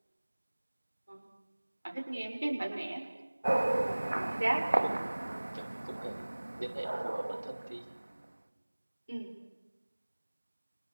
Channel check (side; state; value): both; inverted; correlation -1.00